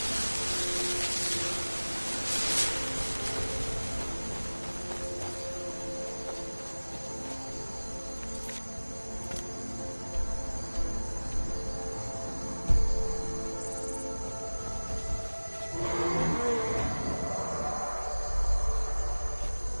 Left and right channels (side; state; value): both; inverted; correlation -1.00